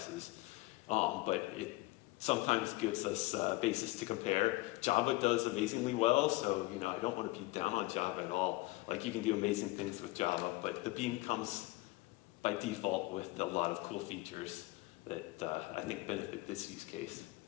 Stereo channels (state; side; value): quieter; right; 20.9 dB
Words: but it sometimes gives us a basis to compare. Java does amazingly well, so I don't want to be down on Java at all. Like, you can do amazing things with Java, but the Beam comes by default with a lot of cool features that I think benefit this use case,